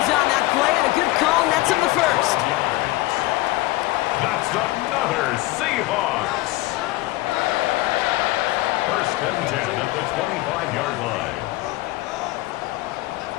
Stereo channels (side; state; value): right; quieter; 19.1 dB